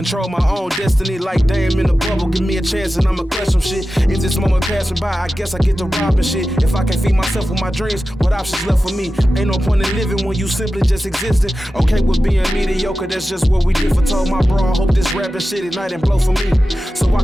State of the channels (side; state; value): both; normal; correlation 0.94